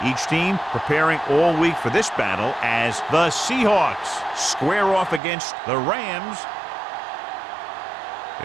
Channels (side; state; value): left; drops out; at 5.2 s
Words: Each team preparing all week for this battle as the Seahawks square off against the Rams.